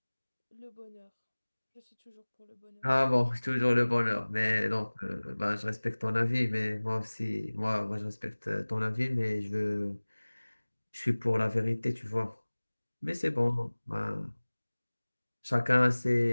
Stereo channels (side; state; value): both; inverted; correlation -1.00